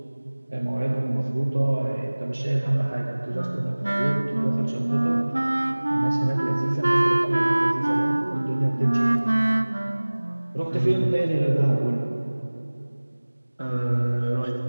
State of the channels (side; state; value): both; inverted; correlation -1.00